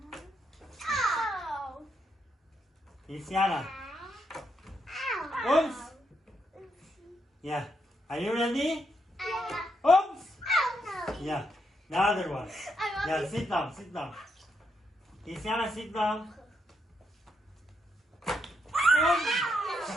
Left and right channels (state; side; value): normal; both; correlation 0.79